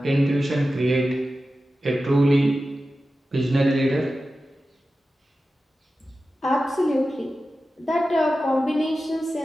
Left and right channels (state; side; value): normal; both; correlation 0.93